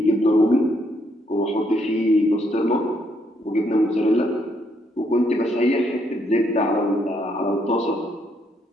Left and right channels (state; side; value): normal; both; correlation 0.73